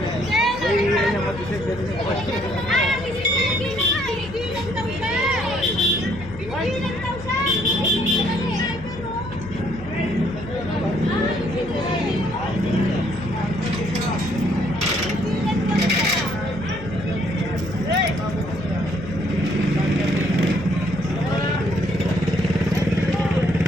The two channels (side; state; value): left; noise; hum, 14 dB below the sound